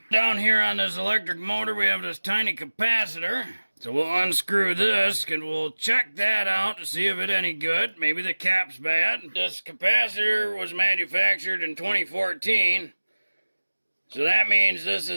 Down here on this electric motor, we have this tiny capacitor. So we'll unscrew this and we'll check that out to see if it's any good. Maybe the cap's bad. This capacitor was manufactured in 2014. So that means this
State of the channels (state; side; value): inverted; both; correlation -1.00